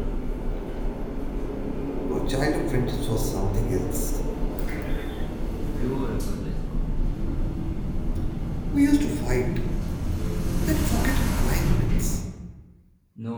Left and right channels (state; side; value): identical; both; correlation 1.00